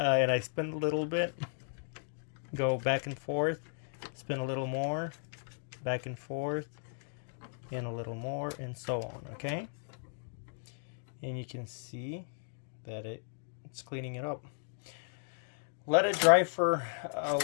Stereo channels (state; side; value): silent; right; digital silence